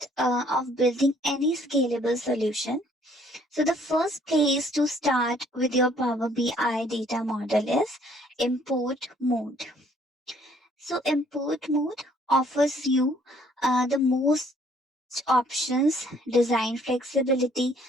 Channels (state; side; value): normal; both; correlation 0.62